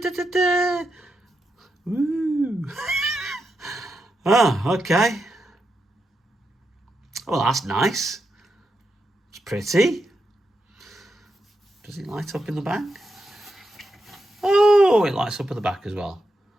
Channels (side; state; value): both; normal; correlation 0.86